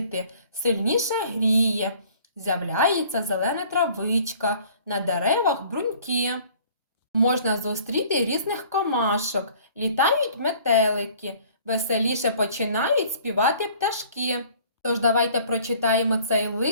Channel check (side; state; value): both; inverted; correlation -0.53